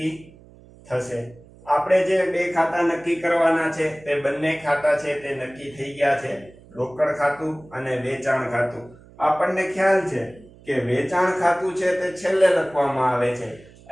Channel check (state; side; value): noise; right; hum, 24 dB below the sound